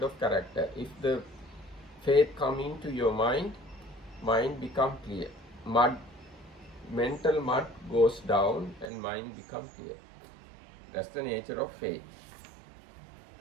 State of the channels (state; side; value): drops out; left; at 8.9 s